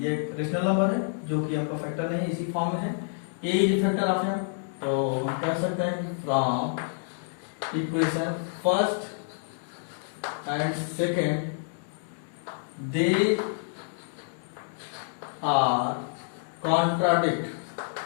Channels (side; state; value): right; silent; digital silence